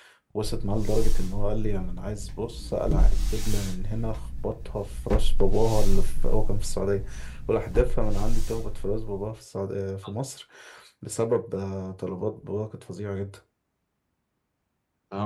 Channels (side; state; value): both; identical; correlation 1.00